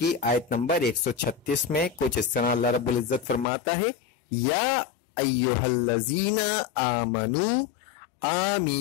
آیت نمبر 136 میں کچھ اس طرح اللہ رب العزت فرماتا ہے، یا ایھا الذین آمنوا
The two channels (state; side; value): drops out; right; at 3.5 s